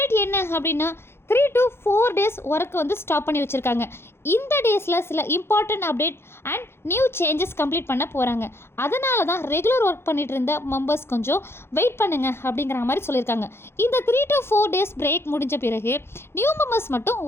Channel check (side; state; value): right; late; 0.12 ms